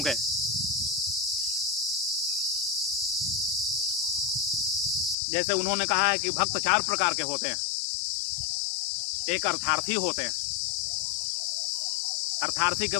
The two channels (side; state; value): right; drops out; at 5.2 s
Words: जैसे उन्होंने कहा है कि भक्त 4 प्रकार के होते हैं। एक अर्थार्थी होते हैं। अर्थार्थी का